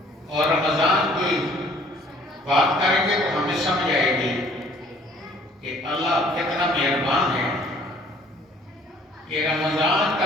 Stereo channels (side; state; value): both; normal; correlation 0.57